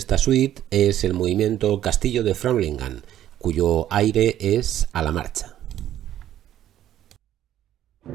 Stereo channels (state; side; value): quieter; left; 11.9 dB